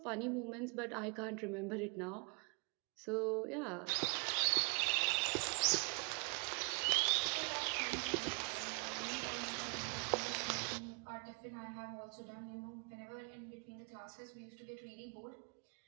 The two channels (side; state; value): left; quieter; 35.7 dB